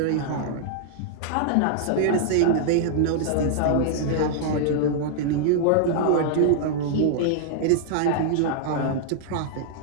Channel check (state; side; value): different; both; correlation -0.01